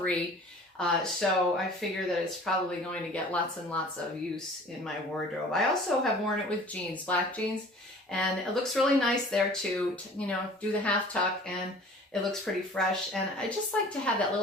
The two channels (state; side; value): normal; both; correlation 0.47